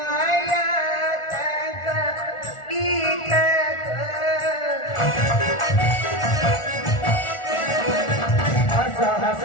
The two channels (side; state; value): right; late; 1.4 ms